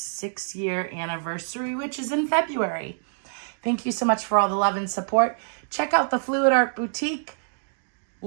anniversary, which is in February. Thank you so much for all the love and support. Check out the Fluid Art Boutique,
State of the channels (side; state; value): left; silent; digital silence